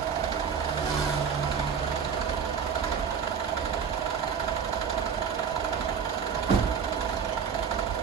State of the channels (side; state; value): left; quieter; 6.9 dB